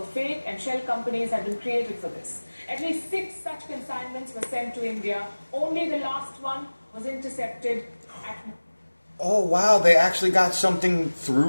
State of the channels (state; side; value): inverted; both; correlation -1.00